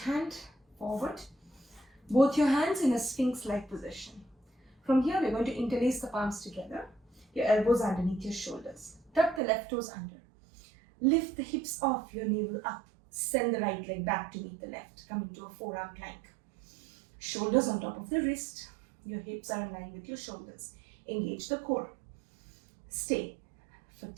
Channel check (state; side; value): drops out; left; at 9.4 s